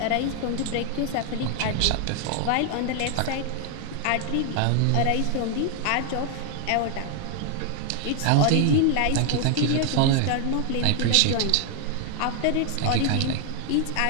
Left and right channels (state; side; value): different; both; correlation 0.00